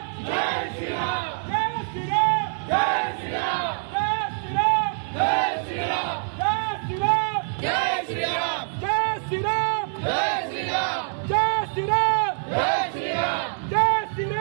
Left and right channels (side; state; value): left; silent; 55 dB below the other